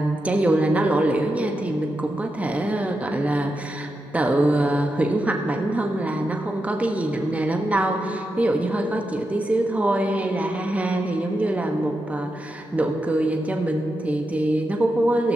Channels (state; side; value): normal; both; correlation 0.87